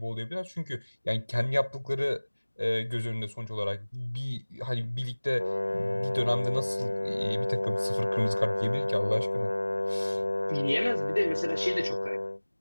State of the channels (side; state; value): both; inverted; correlation -1.00